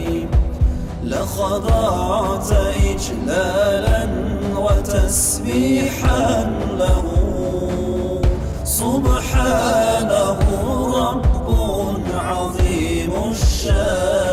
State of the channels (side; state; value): both; identical; correlation 1.00